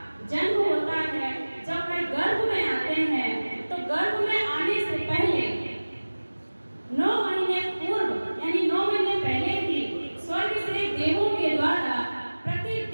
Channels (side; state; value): both; inverted; correlation -1.00